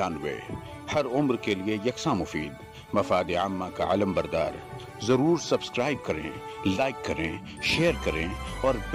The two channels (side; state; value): both; identical; correlation 1.00